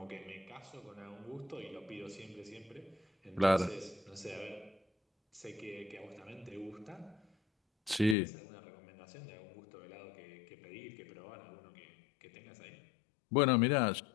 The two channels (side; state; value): right; drops out; at 8.2 s